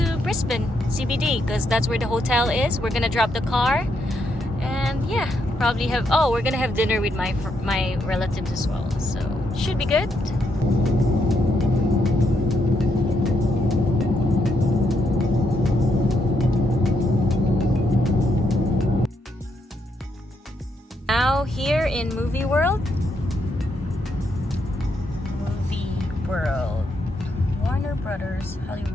Brisbane CBD because that's where the hotel is. We're gonna drop the car. And yeah, probably we're gonna have dinner with my relatives as well. So should be good. Now here in Movie World. Warner Brothers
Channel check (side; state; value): both; normal; correlation 0.78